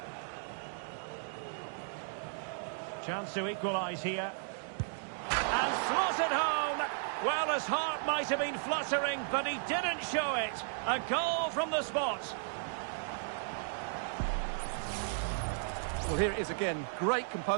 Chance to equalise here. And slotted home. Well, his heart might have been fluttering, but he didn't show it. A goal from the spot. Well, here it is again. Great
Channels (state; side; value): silent; left; digital silence